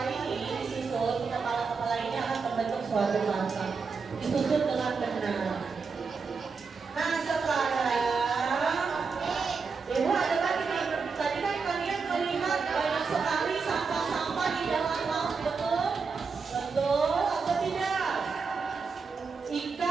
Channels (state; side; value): quieter; left; 5.0 dB